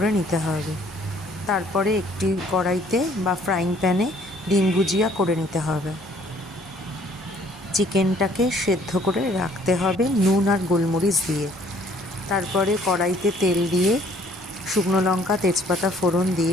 নিতে হবে। তারপরে একটি কড়াইতে বা ফ্রাইং প্যানে ডিম ভুজিয়া করে নিতে হবে। চিকেনটাকে সেদ্ধ করে রাখতে হবে নুন আর গোলমরিচ দিয়ে। তারপরে কড়াইতে তেল দিয়ে শুকনো লঙ্কা, তেজপাতা ফোড়ন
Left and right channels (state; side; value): normal; both; correlation 0.60